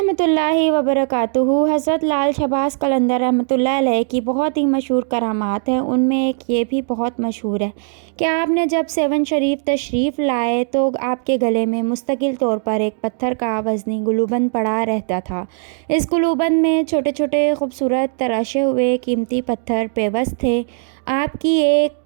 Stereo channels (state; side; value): silent; left; 58 dB below the other